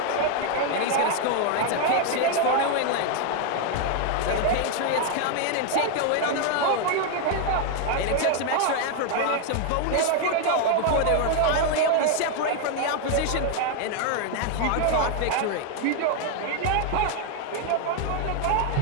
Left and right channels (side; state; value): both; different; correlation 0.01